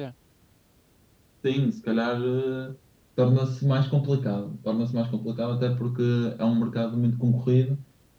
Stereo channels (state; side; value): identical; both; correlation 1.00